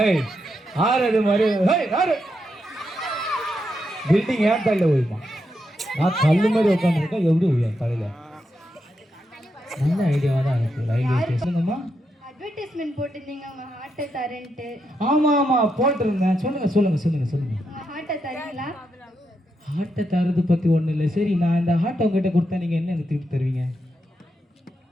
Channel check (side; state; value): both; normal; correlation 0.83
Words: ஆறு மாதிரி பில்டிங் ஏன் தலையில் ஊழிமா? நான் கல்லு மாதிரி உட்காந்துருக்கேன், எப்படி ஊழியம் தலையில்? நல்ல ஐடியாவாக தான் இருக்கு. ரயில்வே ஸ்டேஷனுங்கம்மா அட்வர்டைஸ்மெண்ட் போட்டிருந்தீங்க உங்க ஹார்ட்டை தரேன்ட்டு. ஆமா போட்டிருந்தேன். சொல்லுங்க. ஹார்ட்டை தரீங்களா? ஹார்ட்டை தரது பத்தி ஒண்ணு இல்லை. சரி, நான் இந்த ஹார்ட்டை உங்ககிட்ட கொடுத்தா நீங்க என்ன எனக்கு திருப்பி தருவீங்க?